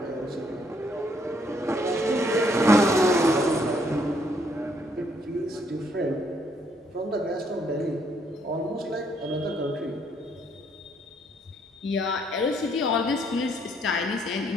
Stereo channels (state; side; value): normal; both; correlation 0.69